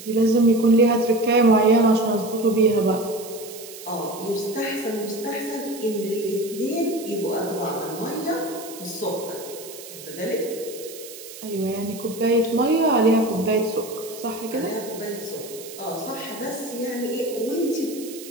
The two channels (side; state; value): right; noise; hiss, 15 dB below the sound